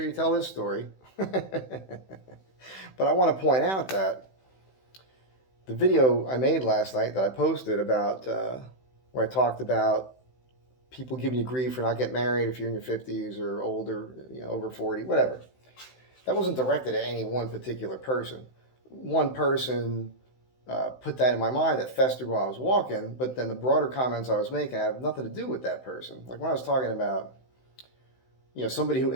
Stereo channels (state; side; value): late; right; 16 ms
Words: you tell this story." But I want to point out that the video I made last night that I posted about where I talked about people giving you grief for not getting married if you're in your 50s or older, over 40, whatever. That wasn't directed at any one particular person. One person put that in my mind that festered while I was walking, but then the broader comments I was making have nothing to do with that person. Like when I was talking about, somebody who